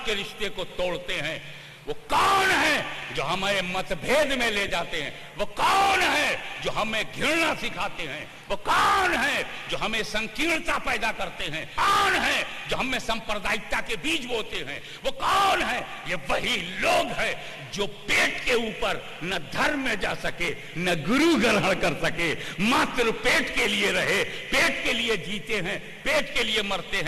रिश्ते को तोड़ते हैं? वो कौन है जो हमें मतभेद में ले जाते हैं? वो कौन है जो हमें घृणा सिखाते हैं? वो कौन है जो हमें संकीर्णता पैदा करते हैं? कौन है जो हमें सांप्रदायिकता के बीज बोते हैं? वो कौन है? ये वही लोग हैं जो पेट के ऊपर न धर्म में जा सके, न गुरु ग्रहण कर सके, मात्र पेट के लिए रहे, पेट के लिए जीते हैं, पेट के लिए मरते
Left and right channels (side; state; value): both; identical; correlation 1.00